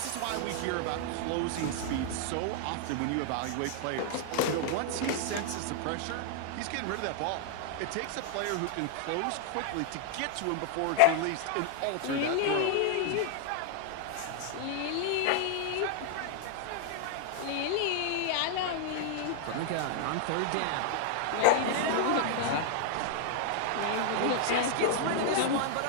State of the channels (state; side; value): different; both; correlation 0.00